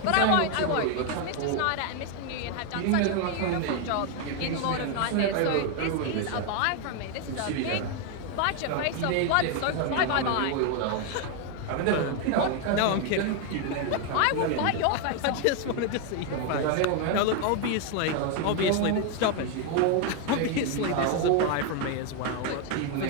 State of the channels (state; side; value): different; both; correlation 0.01